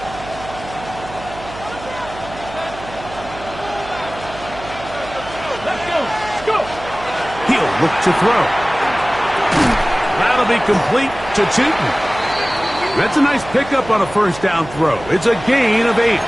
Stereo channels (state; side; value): noise; right; hum, 14 dB below the sound